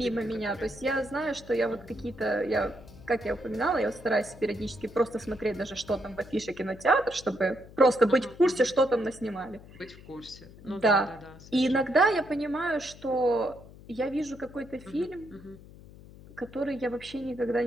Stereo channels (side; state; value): left; noise; hum, 19 dB below the sound